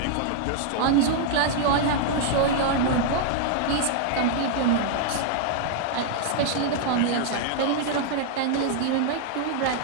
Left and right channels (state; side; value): different; both; correlation -0.01